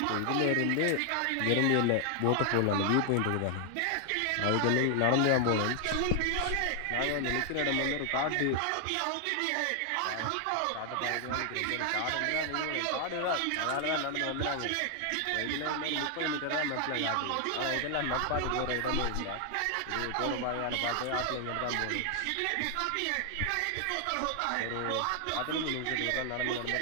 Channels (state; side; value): different; both; correlation 0.00